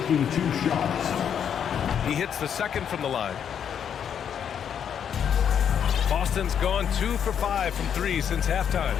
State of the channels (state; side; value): quieter; right; 8.3 dB